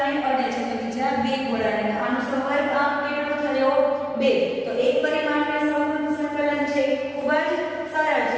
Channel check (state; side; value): identical; both; correlation 1.00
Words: અડે છે તો બીજા બે ગોળાને, આનો સવર્ગાંક કેટલો થયો 2। તો એક પરિમાણીય સવૃત્ત સંકલન છે ખૂબ જ સરળ